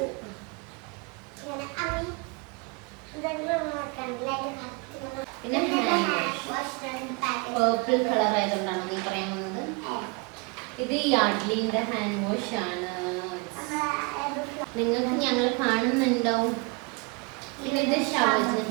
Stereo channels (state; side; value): quieter; left; 29.4 dB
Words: പിന്നെ പേർപ്പിൾ കളർ ആയതുകൊണ്ടാണ് നീ പറയാൻ വന്നത്. ഇത് യാഡ്ലിന്റെ ഹാൻഡ് വാഷ് ആണ്. നിങ്ങൾക്ക് ഞങ്ങൾ കാണുന്നുണ്ടാവും. പിന്നെ ഇത് ഷവർ